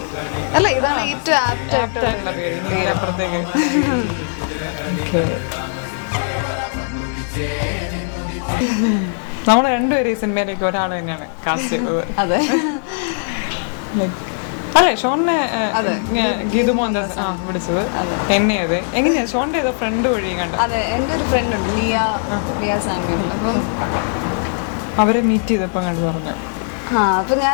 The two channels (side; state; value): right; silent; 63 dB below the other